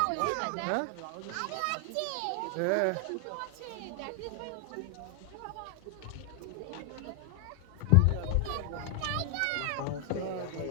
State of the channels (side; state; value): both; different; correlation 0.00